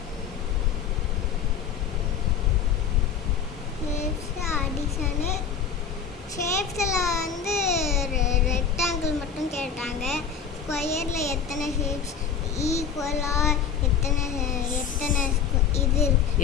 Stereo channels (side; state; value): right; quieter; 7.1 dB